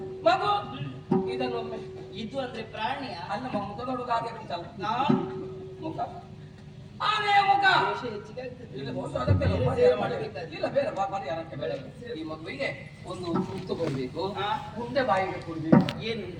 ಮಗು ಇದನ್ನೊಮ್ಮೆ ಇದು ಅಂದ್ರೆ ಪ್ರಾಣಿಯ ಅಲ್ಲ ಮುಖ ನೋಡುವಾಗ ಹಾಗೆ ಉಂಟಲ್ಲ, ನಾನು ಮುಖ ಆನೆಯ ಮುಖ ದೋಷ ಹೆಚ್ಚಿಗೆ ಆಗ್ತದೆ. ಇಲ್ಲ ದೋಷ ಅದಕ್ಕೆ ಅಲ್ಲ, ಪರಿಹಾರ ಮಾಡಬೇಕು. ಇಲ್ಲ ಬೇರೆ ಪರಿಹಾರಕ್ಕೆ ಬೇಡ. ಈ ಮಗುವಿಗೆ ಒಂದು ತುತ್ತು ಕೊಡ್ಬೇಕು, ಉಂಡೆ ಬಾಯಿಗೆ ಕೊಡ್ಬೇಕು.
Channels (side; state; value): both; identical; correlation 1.00